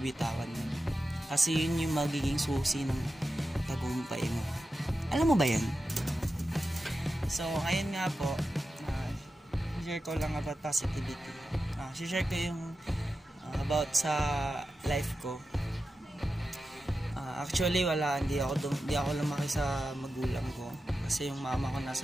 yun. Kasi yun yung magiging susi ng tagumpay mo. Alam mo ba yan? So, ayun nga po. Share ko lang about positivity. Share ko yung about sa life ko. Actually hindi ako lumaki sa magulang ko kasi yung mama ko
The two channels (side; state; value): both; normal; correlation 0.92